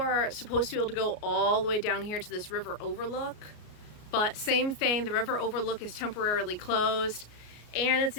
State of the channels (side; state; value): right; late; 33 ms